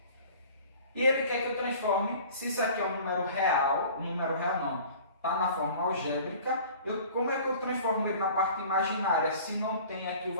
E ele quer que eu transforme, se isso aqui é um número real não, está na forma algébrica, como é que eu transformo ele na parte imaginária se não tem aqui o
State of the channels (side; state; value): both; inverted; correlation -0.45